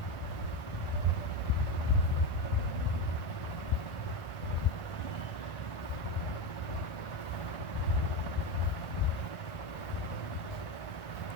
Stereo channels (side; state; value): right; late; 1.5 ms